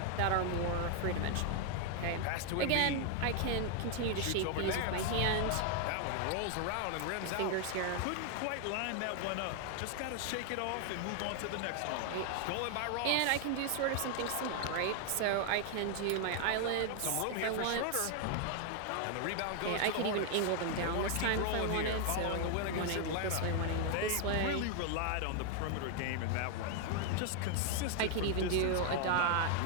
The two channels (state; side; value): different; both; correlation 0.00